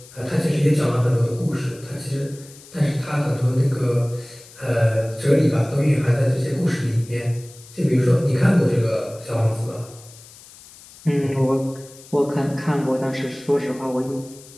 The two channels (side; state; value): left; noise; hiss, 21 dB below the sound